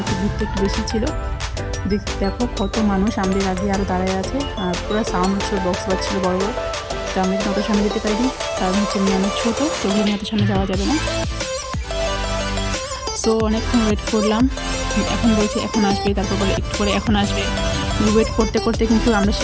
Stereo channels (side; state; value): both; identical; correlation 1.00